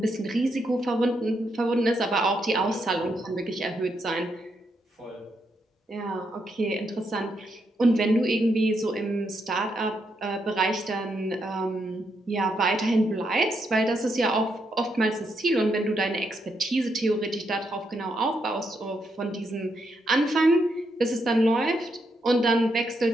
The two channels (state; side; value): normal; both; correlation 0.80